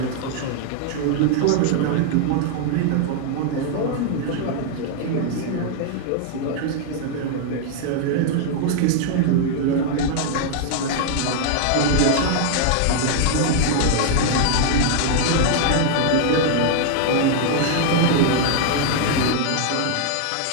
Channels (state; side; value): different; both; correlation 0.00